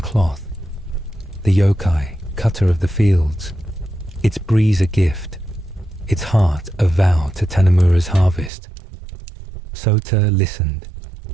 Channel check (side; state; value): left; drops out; at 8.5 s